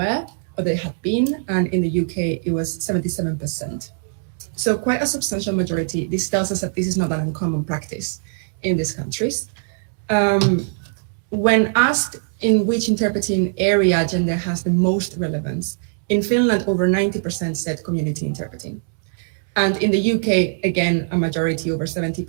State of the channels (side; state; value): left; silent; digital silence